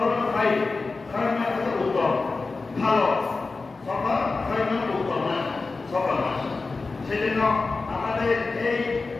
ভাই খারাপ উত্তম ভালো সফর খারাপ উত্তম মাস সফর মাস। সেজন্য আমাদের এই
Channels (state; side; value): quieter; right; 3.9 dB